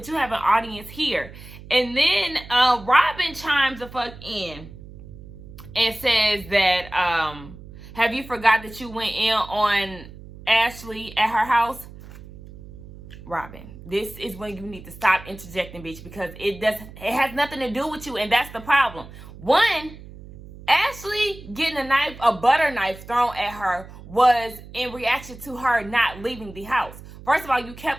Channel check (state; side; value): noise; right; hum, 17 dB below the sound